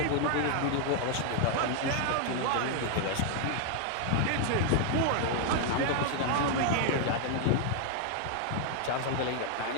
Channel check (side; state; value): both; different; correlation 0.00